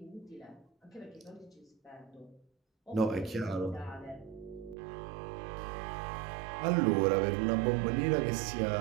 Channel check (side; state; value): left; drops out; at 4.8 s